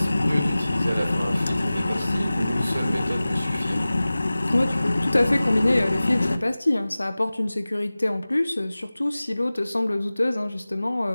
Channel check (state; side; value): inverted; both; correlation -0.98